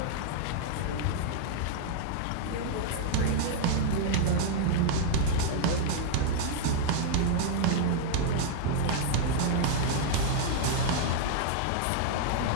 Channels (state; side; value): different; both; correlation -0.01